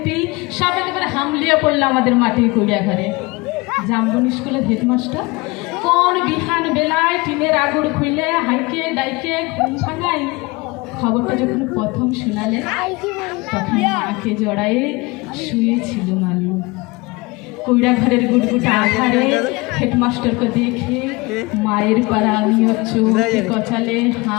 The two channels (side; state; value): right; quieter; 24.2 dB